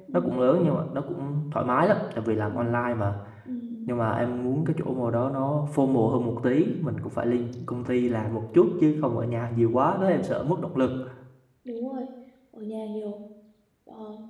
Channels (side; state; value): both; identical; correlation 1.00